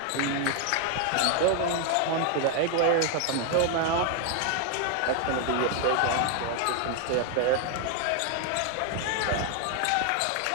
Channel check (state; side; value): different; both; correlation 0.01